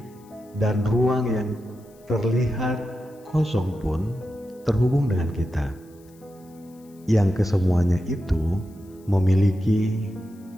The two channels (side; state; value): left; noise; hiss, 30 dB below the sound